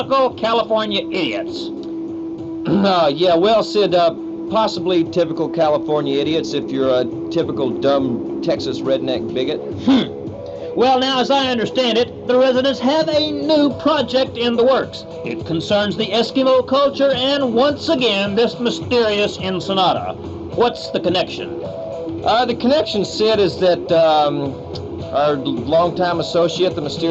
California idiots. Yeah, well, Sid, possibly typical California idiots if you're a typical dumb Texas redneck bigot. Well, now, as I understand it, the residents have a new project in the works. It concerns the Eskimo culture and, once again, this mysterious Ensenada. What's the connection? The connection, Sid, is that our longtime associate, the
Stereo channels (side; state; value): both; identical; correlation 1.00